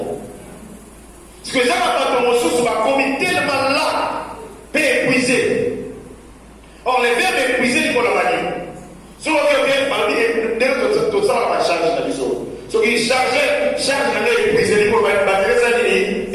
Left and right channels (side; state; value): both; identical; correlation 1.00